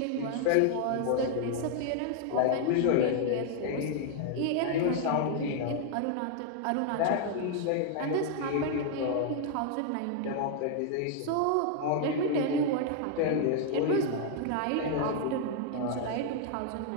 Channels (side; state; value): both; different; correlation 0.00